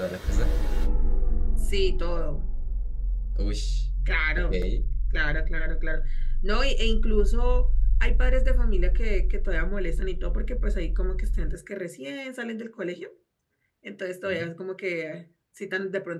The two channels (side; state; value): both; identical; correlation 1.00